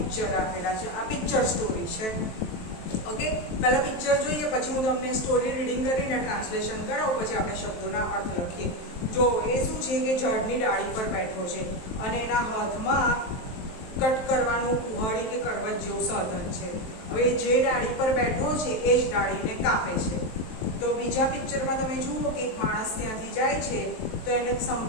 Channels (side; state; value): right; late; 23 ms